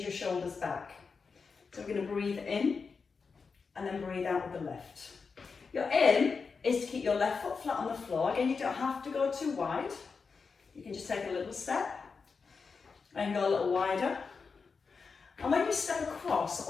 your shoulders back. So we're going to breathe in, and then breathe out with the lift. Your in is to keep your left foot flat on the floor. Again, you don't have to go too wide. You can just take a little step, and go a little wider. And when you step across,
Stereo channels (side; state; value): right; quieter; 5.1 dB